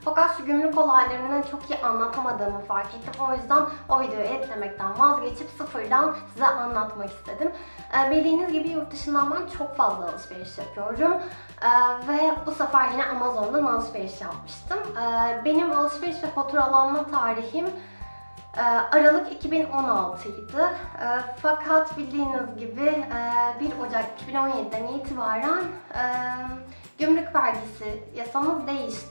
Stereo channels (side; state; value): both; inverted; correlation -1.00